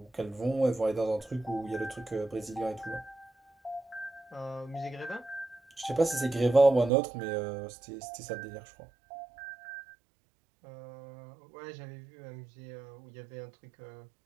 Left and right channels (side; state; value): left; drops out; at 6.9 s